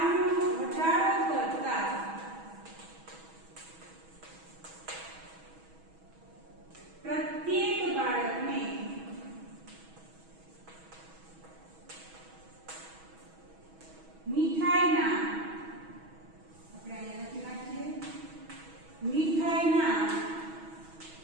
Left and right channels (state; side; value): late; left; 6.2 ms